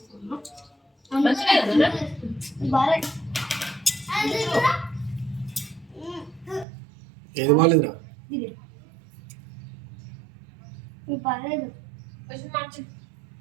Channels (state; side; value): drops out; left; at 6.7 s